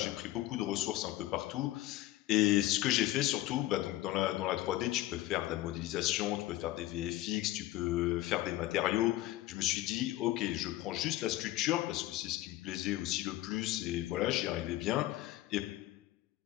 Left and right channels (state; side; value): quieter; right; 15.9 dB